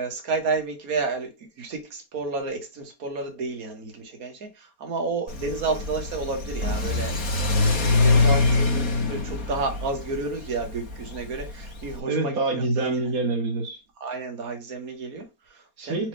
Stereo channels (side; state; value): left; late; 4.3 ms